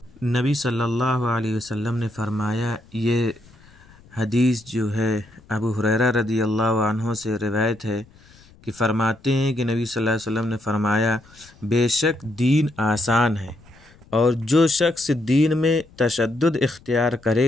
نبی صلی اللہ علیہ وسلم نے فرمایا، یہ حدیث جو ہے ابو ہریرہ رضی اللہ عنہ سے روایت ہے کہ فرماتے ہیں کہ نبی صلی اللہ علیہ وسلم نے فرمایا، بے شک دین آسان ہے، اور جو شخص دین میں تشدد اختیار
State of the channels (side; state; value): left; noise; rumble, 26 dB below the sound